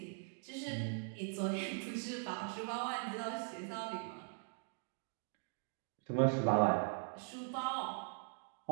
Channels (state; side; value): silent; left; 51 dB below the other